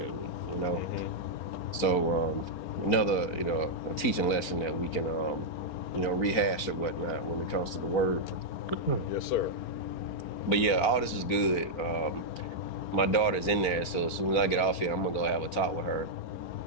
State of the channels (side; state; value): right; late; 4.4 ms